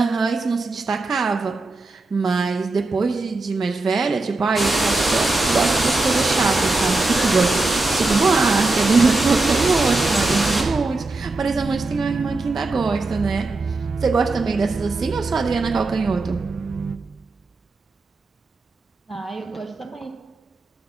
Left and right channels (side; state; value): left; quieter; 3.3 dB